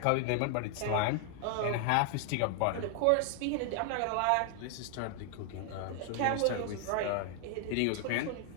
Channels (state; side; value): different; both; correlation 0.00